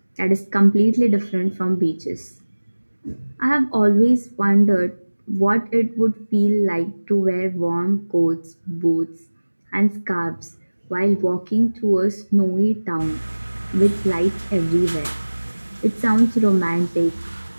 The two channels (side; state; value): both; inverted; correlation -1.00